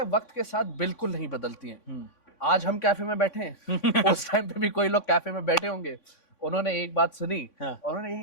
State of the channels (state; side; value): late; right; 3.5 ms